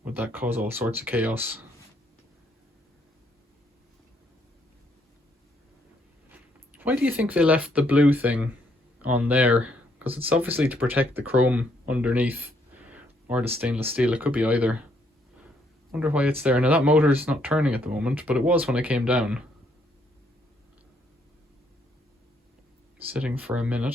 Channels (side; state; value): both; normal; correlation 0.71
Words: cause all sorts of chaos? Why do you think they left the blue thing on there? Because it's obviously to protect the chrome underneath, or the stainless steel. It could be either. Wonder why it's there. Now that motor's not turning at the moment, but it was when I came down. Sitting for a